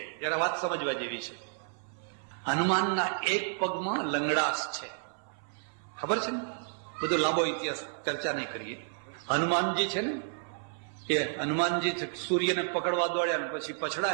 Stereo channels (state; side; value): silent; left; 57 dB below the other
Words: ત્યારે વાત સમજવા જેવી છે. હનુમાનના એક પગમાં લંગડાશ છે, ખબર છે ને? બધો લાંબો ઇતિહાસ ચર્ચા નહીં કરીએ. હનુમાનજી છે ને, કે હનુમાનજી સૂર્યને પકડવા દોડ્યા ને પછી